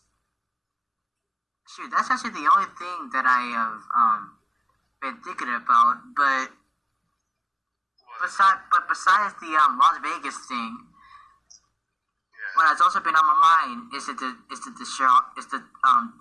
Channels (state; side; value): identical; both; correlation 1.00